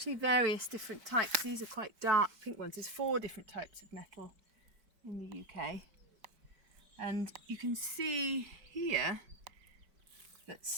various different types. These are quite dark pink ones. There's 4 different types of nettle in the UK. And you can see here that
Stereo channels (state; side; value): late; left; 4.5 ms